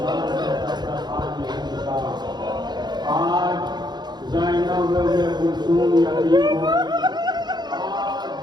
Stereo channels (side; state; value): left; late; 0.21 ms